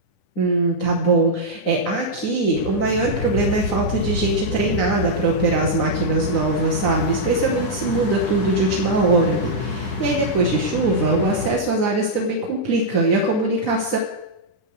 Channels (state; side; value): late; right; 9.7 ms